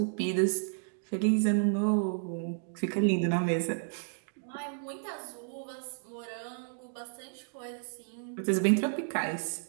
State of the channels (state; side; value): silent; left; digital silence